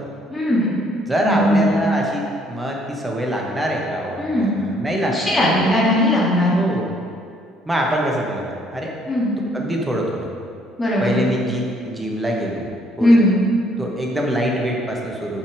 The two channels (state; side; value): normal; both; correlation 0.66